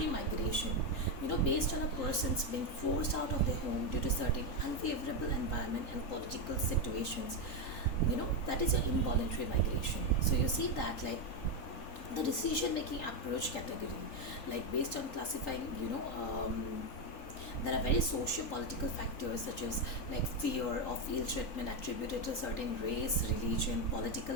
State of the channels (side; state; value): right; late; 3.9 ms